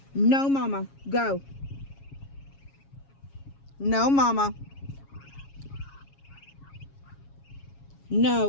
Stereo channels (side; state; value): right; late; 7.3 ms